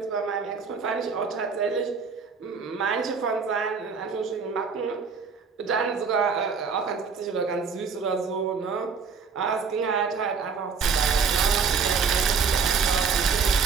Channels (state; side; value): quieter; left; 5.5 dB